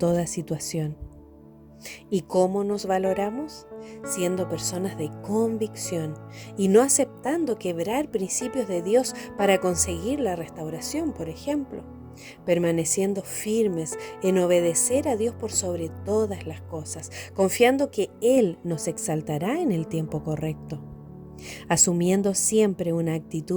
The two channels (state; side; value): identical; both; correlation 1.00